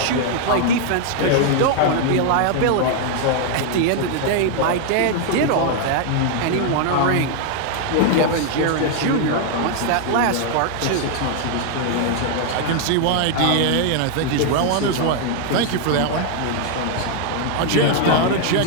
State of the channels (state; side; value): different; both; correlation 0.00